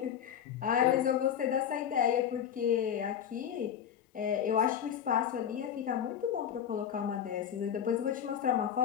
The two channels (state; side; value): quieter; right; 9.1 dB